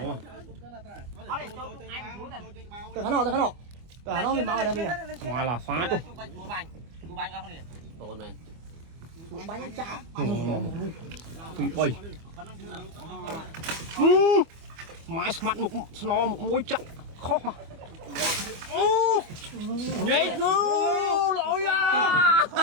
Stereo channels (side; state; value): left; late; 25 ms